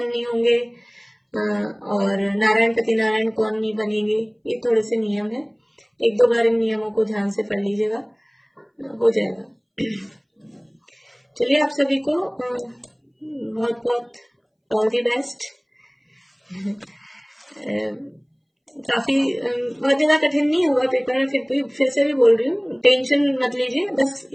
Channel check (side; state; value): both; identical; correlation 1.00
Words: नहीं होंगे, और नारायण पति नारायण कौन नहीं बनेंगे, ये थोड़े से नियम है, एक दो बार इन नियमों को ध्यान से पढ़ लीजिएगा, हो जाएगा। चलिए, आप सभी को बहुत बहुत ऑल दी बेस्ट। काफी बहुत ज्यादा कठिन नहीं होगा पेपर में, फिर से भी बोल रही हूँ, टेंशन मत लीजिए, बस